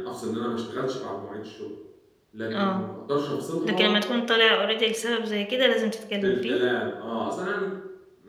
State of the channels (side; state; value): both; identical; correlation 1.00